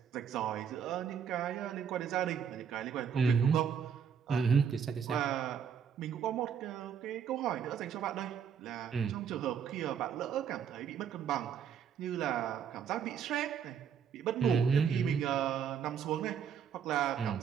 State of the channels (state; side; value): quieter; left; 7.5 dB